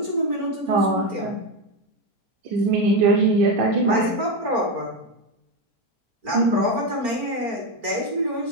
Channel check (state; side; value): late; left; 4.4 ms